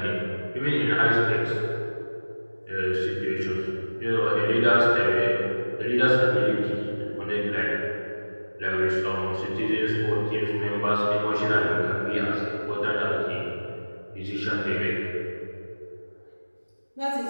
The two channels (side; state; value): both; inverted; correlation -1.00